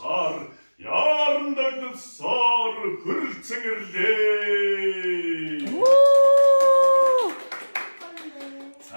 яарандагд сар хөрцөнгөрлээ.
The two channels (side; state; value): both; inverted; correlation -1.00